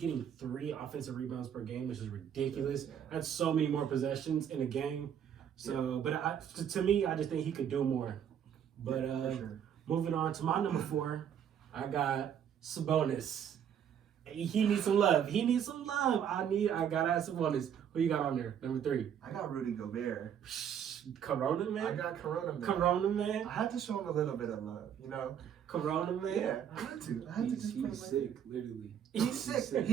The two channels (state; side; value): quieter; left; 8.8 dB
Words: 3 offensive rebounds per game, which is ridiculous. Yeah. That's so many more possessions in a game. So, but to me, I just think he could do more. But For sure. moving on to my number 4, I got Sabonis. He needs some love. He needs some love. I gotta have Sabonis. Who you got on there? Number 3. I got Rudy Gobert. Corona I man. got Corona man. Corona man. I had to show him a little bit of love, you know. Corona man. Yeah, I had to. I had to just put him He's like sick, literally. He's sick.